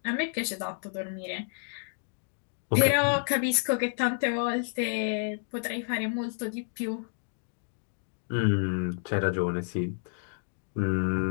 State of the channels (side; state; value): right; silent; digital silence